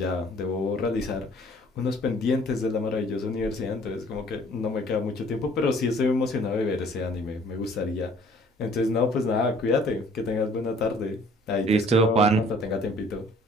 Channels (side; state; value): both; normal; correlation 0.56